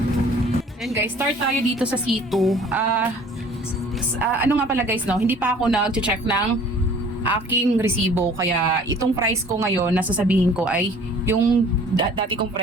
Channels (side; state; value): both; normal; correlation 0.51